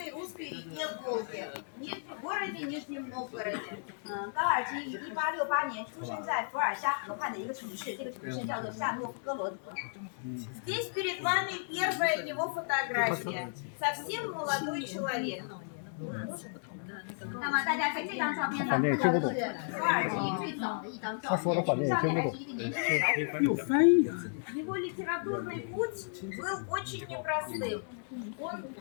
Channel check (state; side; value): silent; right; digital silence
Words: Русской реке Волге, в городе Нижнем Новгороде. 高尔基于1868年出生在伏尔加河畔的一个城市，这个城市叫做夏诺夫哥罗德。Здесь перед вами первая его фотография. Совсем молодой человек. 那么大家在这张照片上看到的是高尔基最早的一张照片，上面还是一个年轻的小伙子。Его литературный путь был очень непростым.